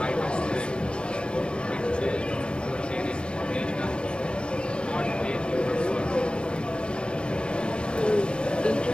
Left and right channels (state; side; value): late; right; 0.057 ms